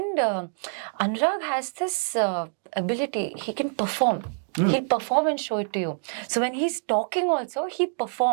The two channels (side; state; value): left; silent; 56 dB below the other